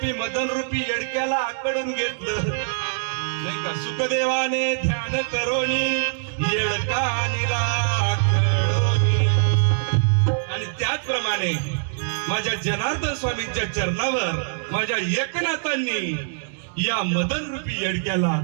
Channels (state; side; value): silent; left; digital silence